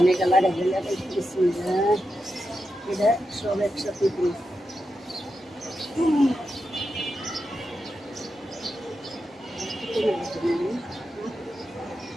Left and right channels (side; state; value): both; normal; correlation 0.88